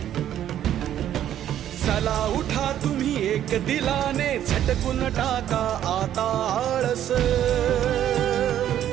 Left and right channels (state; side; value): quieter; left; 11.1 dB